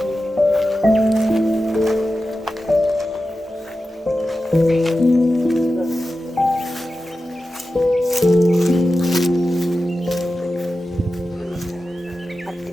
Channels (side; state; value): both; normal; correlation 0.92